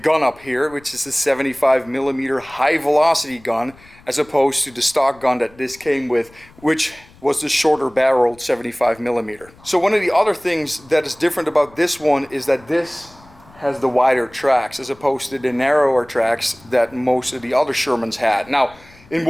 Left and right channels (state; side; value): noise; left; rumble, 26 dB below the sound